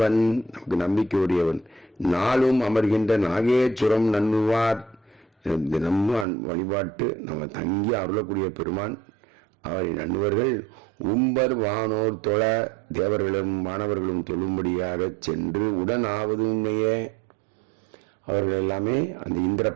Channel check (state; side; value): drops out; left; at 6.2 s